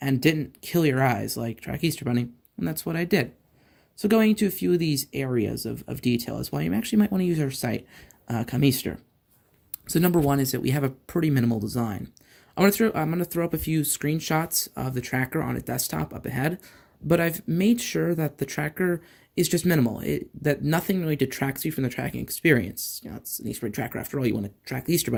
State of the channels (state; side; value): identical; both; correlation 1.00